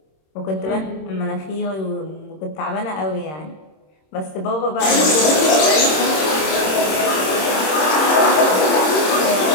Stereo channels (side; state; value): right; late; 26 ms